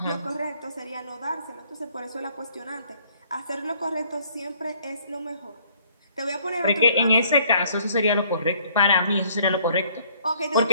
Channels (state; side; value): inverted; both; correlation -0.61